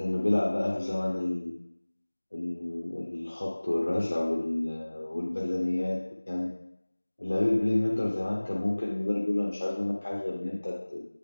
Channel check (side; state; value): both; inverted; correlation -1.00